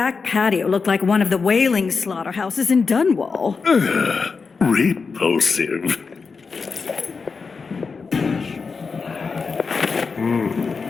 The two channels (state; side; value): quieter; right; 4.9 dB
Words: patio looked like one of the whaling slaughterhouses in Dunwall. Repulsive.